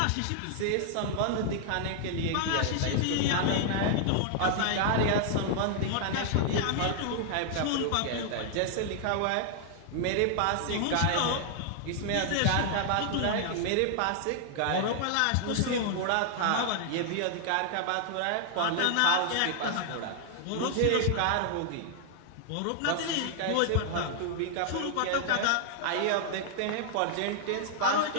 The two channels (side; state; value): both; different; correlation -0.01